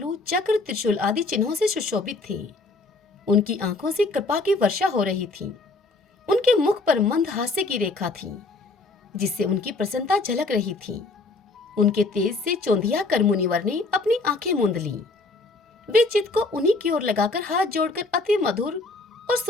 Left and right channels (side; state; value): right; quieter; 3.5 dB